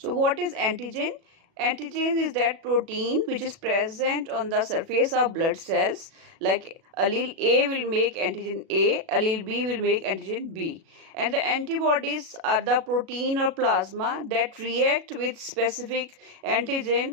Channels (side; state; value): left; late; 37 ms